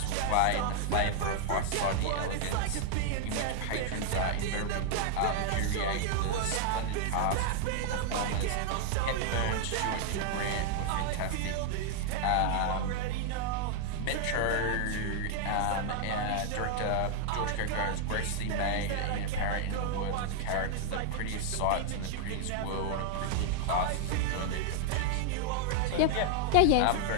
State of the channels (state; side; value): different; both; correlation 0.00